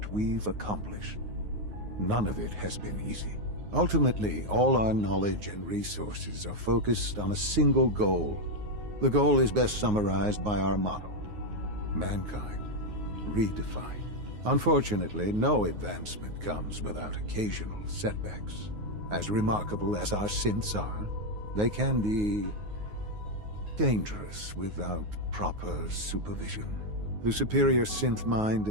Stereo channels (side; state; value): left; late; 9.5 ms